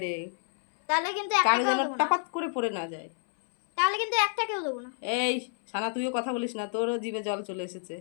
তাহলে কিন্তু কারো যেন টাপাত করে পড়ে না যায়। একটা কেউ দেবো না। এই সানা তুইও কথা বলিস না, তোরও জিভে জল চলে এসেছে।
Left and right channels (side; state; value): right; silent; 59 dB below the other